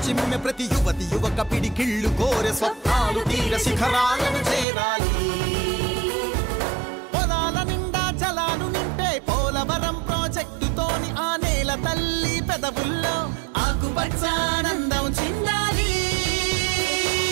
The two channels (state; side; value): drops out; left; at 4.7 s